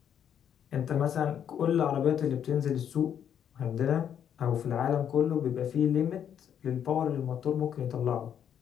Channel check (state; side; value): quieter; right; 9.0 dB